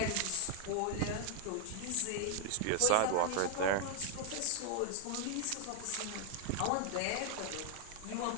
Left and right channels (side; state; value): both; different; correlation 0.00